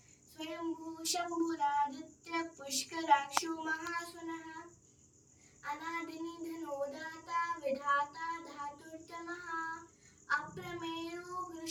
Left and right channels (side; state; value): both; identical; correlation 1.00